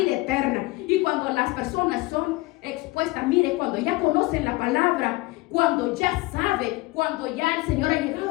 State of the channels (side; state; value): right; quieter; 21.7 dB